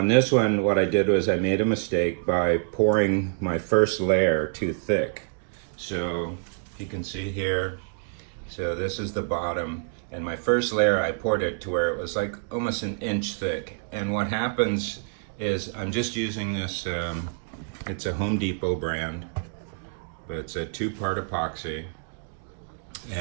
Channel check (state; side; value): silent; left; digital silence